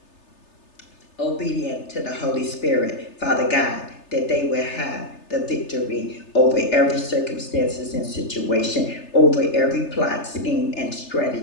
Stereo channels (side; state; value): right; late; 3.3 ms